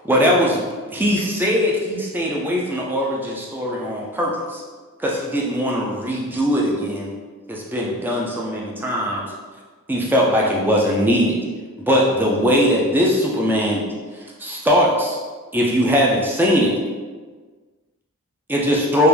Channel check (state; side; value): normal; both; correlation 0.36